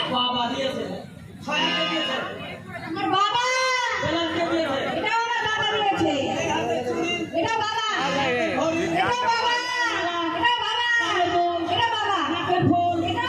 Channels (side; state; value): both; identical; correlation 1.00